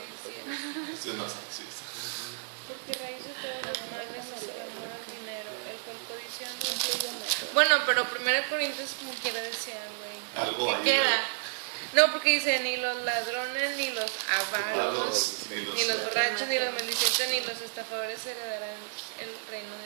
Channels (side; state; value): left; silent; digital silence